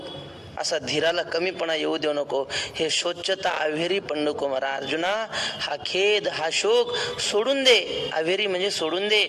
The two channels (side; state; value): both; identical; correlation 1.00